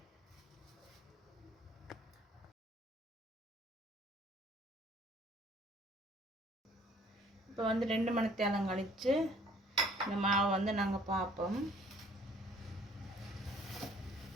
இப்போ வந்து 2 மணித்தியாலம் கழித்து இந்த மாவை வந்து நாங்கள் பார்ப்போம்.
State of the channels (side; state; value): both; normal; correlation 0.56